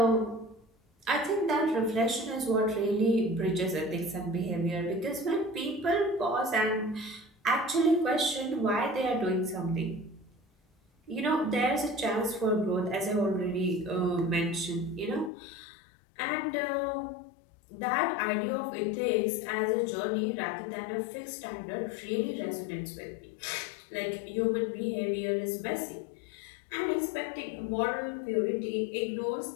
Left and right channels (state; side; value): drops out; right; at 15.3 s